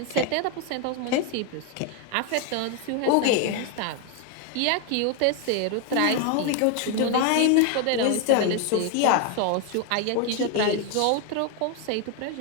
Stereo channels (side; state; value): both; different; correlation 0.01